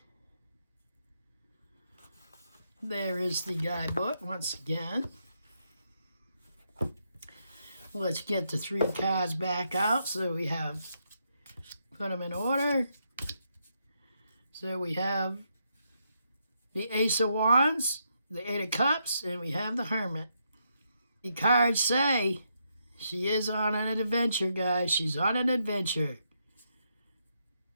There is the guidebook once again. Let's get the 3 cards back out. So we have, put them in order. So we have the Ace of Wands, the 8 of Cups, and we have the Hermit. The cards say she is on an adventure, guys. She's on an adventure.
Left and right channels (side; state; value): both; inverted; correlation -0.79